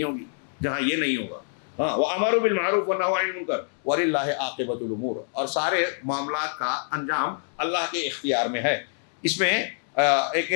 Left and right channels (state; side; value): silent; right; digital silence